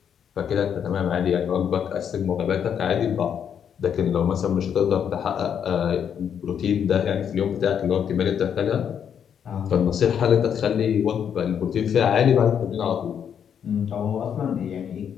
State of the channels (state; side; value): quieter; right; 8.2 dB